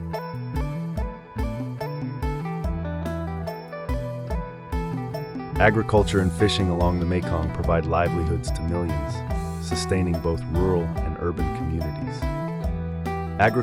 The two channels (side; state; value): both; identical; correlation 1.00